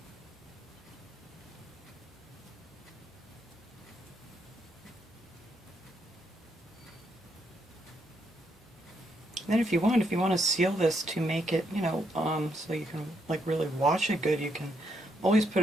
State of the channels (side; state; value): both; normal; correlation 0.77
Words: Then if you want to seal this to make it, you know, so you can like really wash it good, you can always